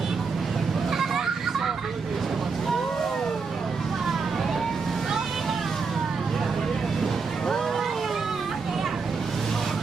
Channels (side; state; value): left; quieter; 4.9 dB